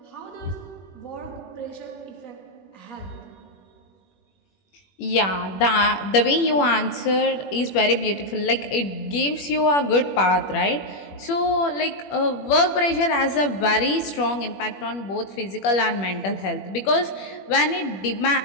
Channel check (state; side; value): late; right; 21 ms